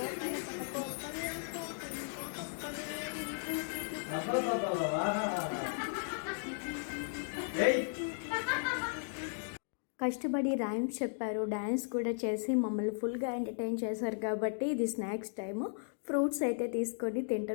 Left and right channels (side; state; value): right; silent; digital silence